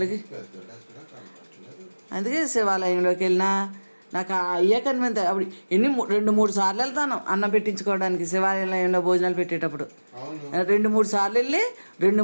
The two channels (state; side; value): inverted; both; correlation -1.00